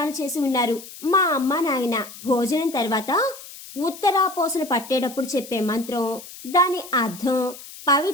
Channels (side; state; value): left; noise; hiss, 15 dB below the sound